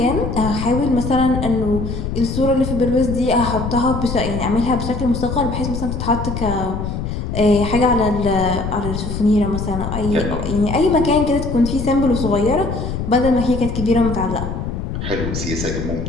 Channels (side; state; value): left; noise; rumble, 4 dB below the sound